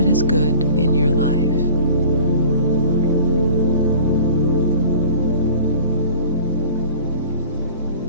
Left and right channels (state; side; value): inverted; both; correlation -0.45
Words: is good in your life.